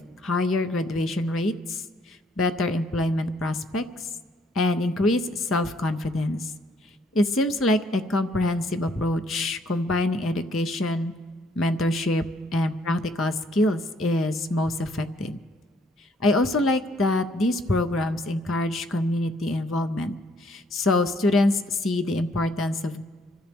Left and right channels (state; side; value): normal; both; correlation 0.66